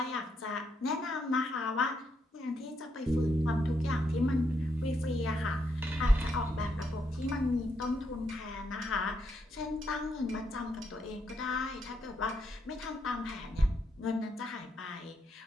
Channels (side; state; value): both; normal; correlation 0.78